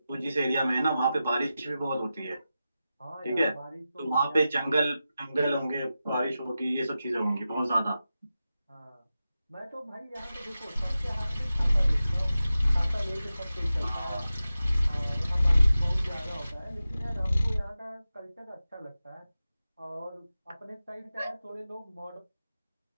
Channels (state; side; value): inverted; both; correlation -0.93